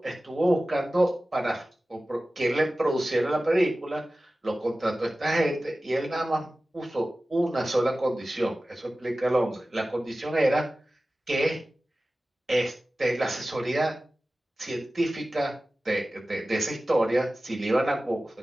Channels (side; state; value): both; normal; correlation 0.96